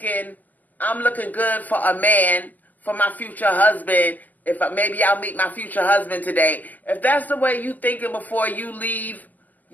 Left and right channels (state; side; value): late; right; 0.082 ms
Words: I'm looking good for a man, for my future husband, maybe I'll meet my future husband today. If that's the way you thinking before you leave